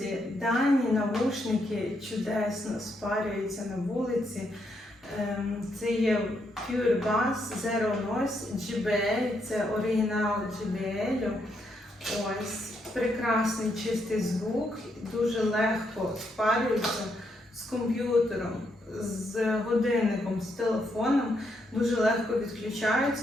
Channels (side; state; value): both; normal; correlation 0.78